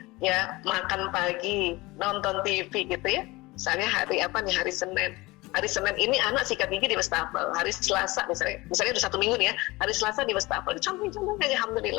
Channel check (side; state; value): right; quieter; 21.8 dB